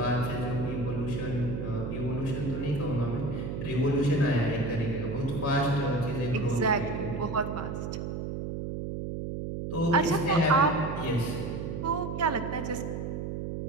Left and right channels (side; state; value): right; noise; hum, 4 dB below the sound